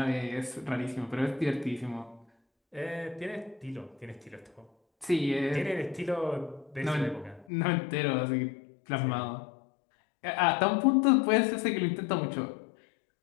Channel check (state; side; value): drops out; right; at 7.5 s